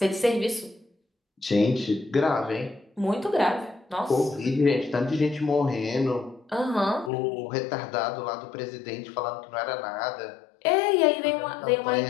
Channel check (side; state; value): right; drops out; at 7.1 s